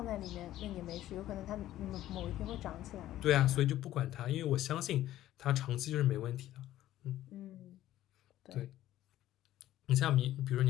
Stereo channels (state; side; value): quieter; right; 13.7 dB